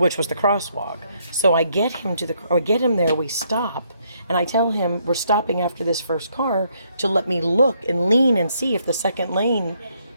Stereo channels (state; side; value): inverted; both; correlation -0.72